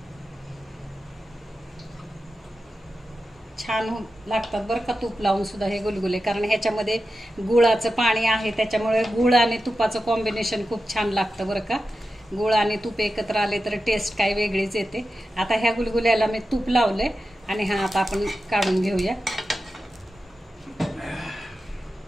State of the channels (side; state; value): both; normal; correlation 0.91